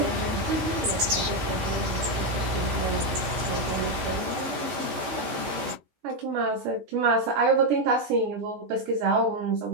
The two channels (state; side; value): late; left; 14 ms